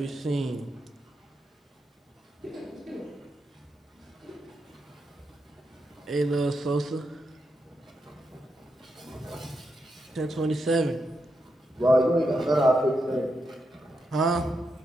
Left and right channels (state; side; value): normal; both; correlation 0.84